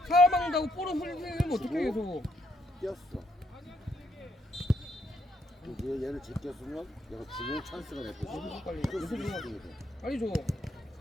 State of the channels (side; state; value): both; normal; correlation 0.74